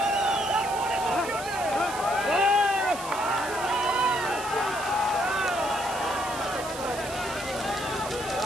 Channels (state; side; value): noise; right; hiss, 11 dB below the sound